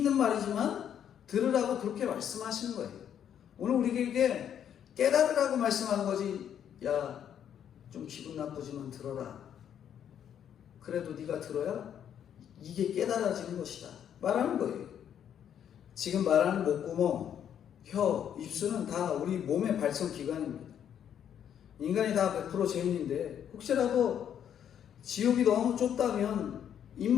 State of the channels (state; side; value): quieter; right; 9.3 dB